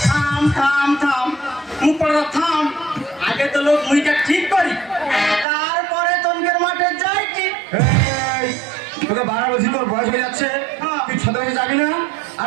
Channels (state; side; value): drops out; left; at 5.5 s